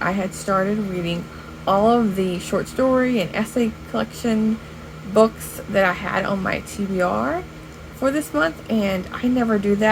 I had started reading all of the short story and essay collection books that I had on my TBR for this month, and I never do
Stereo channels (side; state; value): both; identical; correlation 1.00